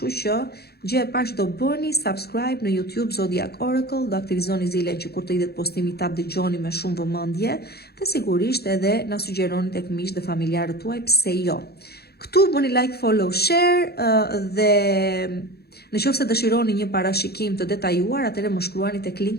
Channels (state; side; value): late; right; 0.46 ms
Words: që gjë e parë që do bëni, subscribe në YouTube Zodiac Oracle, do aktivizoni zilen që kur të idhet postimi ta dëgjoni me shumë vëmendje, dhe sigurisht edhe na sugjeroni tek miqtë dhe familjarët tuaj, pse jo. Këtu bëni like, follow, share dhe nëse dëshironi një parashikim të detajuar, atëherë më shkruani tek